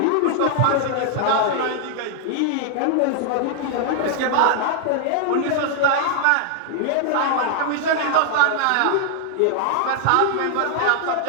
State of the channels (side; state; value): both; different; correlation 0.00